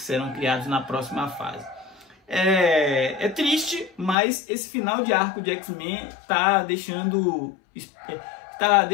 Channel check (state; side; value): drops out; right; at 4.2 s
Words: serão criados na próxima fase. É triste, mas esse final de arco de X-Men tá deixando